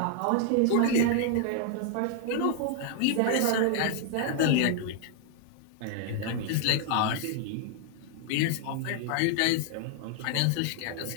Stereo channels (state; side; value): different; both; correlation 0.00